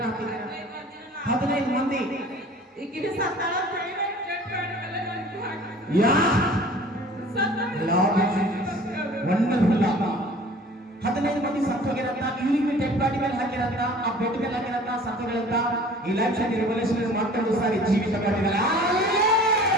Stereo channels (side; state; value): both; normal; correlation 0.47